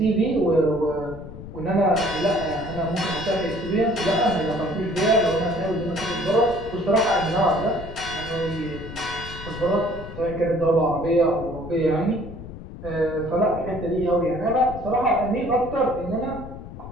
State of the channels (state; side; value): noise; left; rumble, 12 dB below the sound